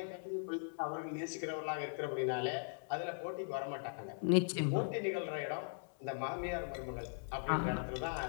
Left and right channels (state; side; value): silent; right; 51 dB below the other